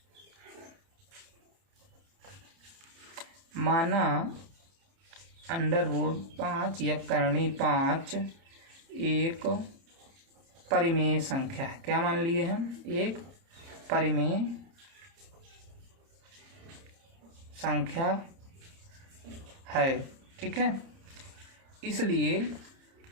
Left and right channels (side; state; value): left; late; 30 ms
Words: माना √5 या करणी 5 एक परिमेय संख्या है। क्या मान लिए हम? एक परिमेय संख्या है। ठीक है, इसलिए